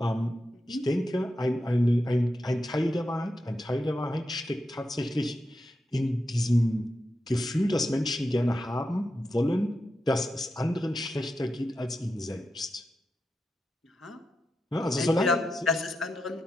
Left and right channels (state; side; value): normal; both; correlation 0.88